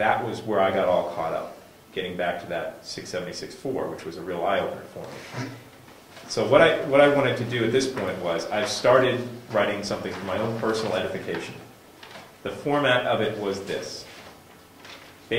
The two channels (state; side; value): identical; both; correlation 1.00